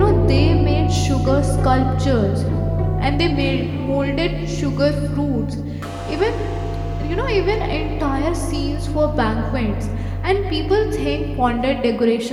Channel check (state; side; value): identical; both; correlation 1.00